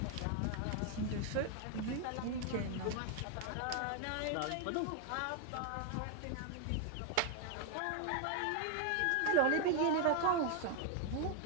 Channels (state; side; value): different; both; correlation 0.00